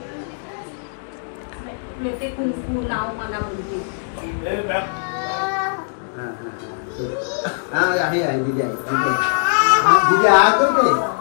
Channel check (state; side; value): silent; right; digital silence